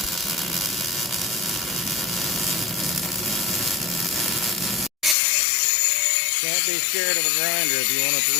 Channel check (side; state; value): right; drops out; at 5.2 s